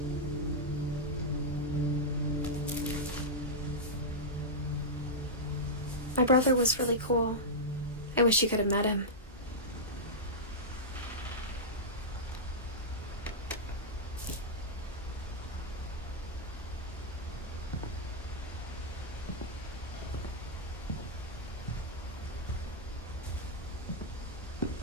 My brother was really cool. I wish you could have met him.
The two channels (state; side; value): normal; both; correlation -0.09